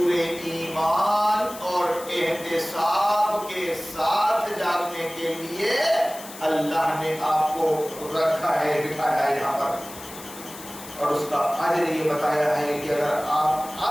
ایمان اور احتساب کے ساتھ جاگنے کے لیے اللہ نے آپ کو رکھا ہے، بٹھایا ہے یہاں پر، اور اس کا اجر یہ بتایا ہے کہ اگر آپ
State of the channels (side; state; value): left; noise; hiss, 15 dB below the sound